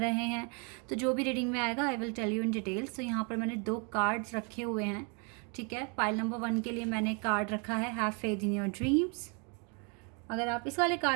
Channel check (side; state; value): left; quieter; 35.8 dB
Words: हैं। तो जो भी रीडिंग में आएगा I will tell you in details. तो यहाँ पर मैंने 2 कार्ड्स रखे हुए हैं। ठीक है, पाइल नंबर 1 के लिए मैंने कार्ड रखा है have faith in your dreams. अगर आप इस वाले